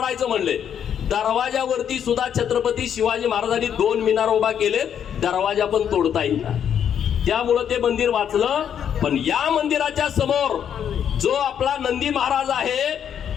म्हणले, दरवाजावरती सुद्धा छत्रपती शिवाजी महाराजांनी 2 मिनार उभा केले, दरवाजा पण तोडता येईल. त्यामुळं ते मंदिर वाचलं. पण या मंदिराच्या समोर जो आपला नंदी महाराज आहे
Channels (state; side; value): quieter; right; 8.8 dB